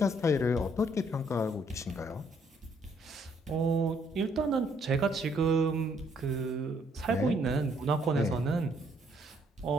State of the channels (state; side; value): normal; both; correlation 0.68